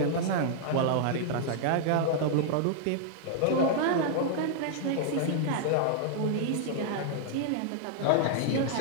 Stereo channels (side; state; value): both; different; correlation -0.01